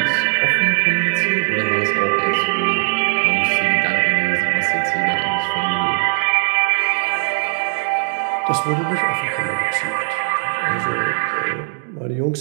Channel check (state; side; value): silent; left; digital silence